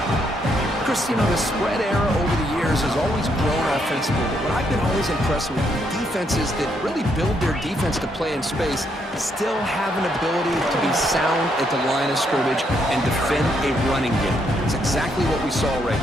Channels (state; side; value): normal; both; correlation 0.75